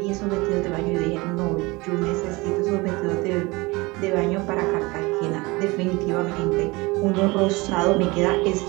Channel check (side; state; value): left; quieter; 23.8 dB